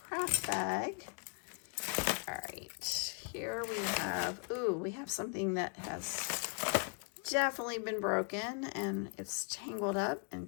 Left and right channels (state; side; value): quieter; right; 38.3 dB